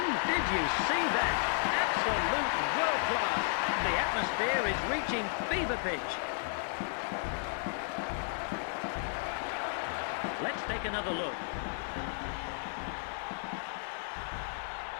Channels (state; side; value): silent; right; 56 dB below the other